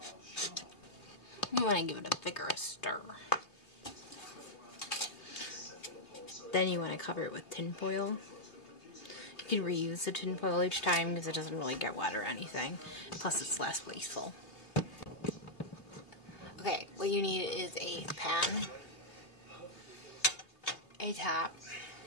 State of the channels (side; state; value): right; late; 3.0 ms